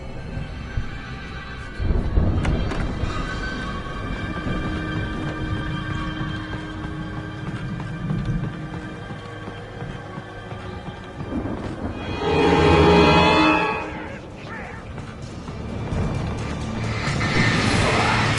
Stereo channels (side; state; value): both; identical; correlation 1.00